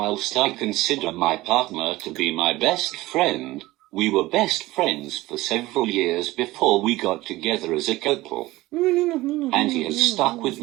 I consider my partner to be my best friend, we were best friends for several years before we got together as a couple. And he has stuck with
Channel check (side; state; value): left; quieter; 18.6 dB